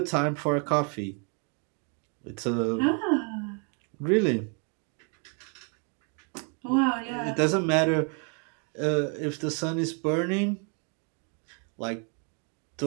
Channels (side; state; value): left; quieter; 38.7 dB